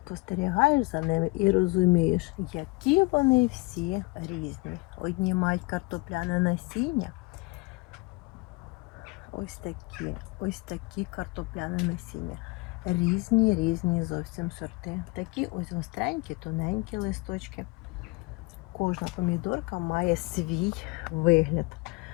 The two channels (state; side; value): quieter; right; 25.6 dB